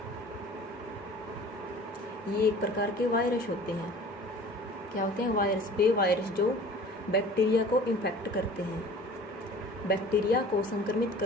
ये एक प्रकार के वायरस होते हैं। क्या होते हैं? वायरस। वे वायरस जो बैक्टीरिया को इन्फेक्ट करते हैं। बैक्टीरिया को संक्रमित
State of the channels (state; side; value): normal; both; correlation 0.45